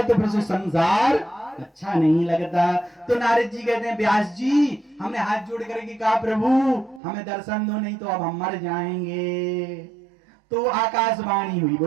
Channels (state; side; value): drops out; left; at 7.0 s